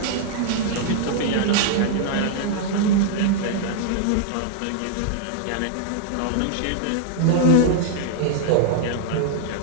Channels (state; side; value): different; both; correlation -0.01